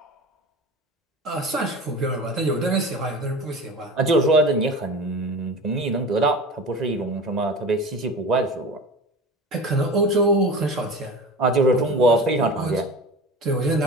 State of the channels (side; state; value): both; normal; correlation 0.33